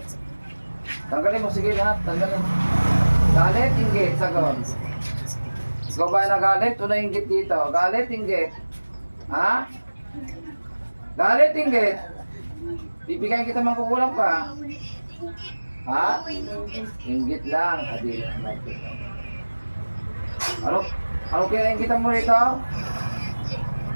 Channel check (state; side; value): inverted; both; correlation -1.00